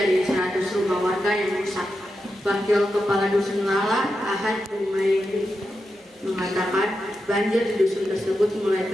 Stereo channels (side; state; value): both; normal; correlation 0.88